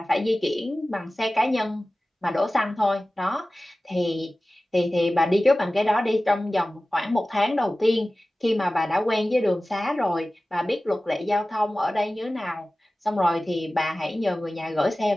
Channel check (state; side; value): normal; both; correlation 0.96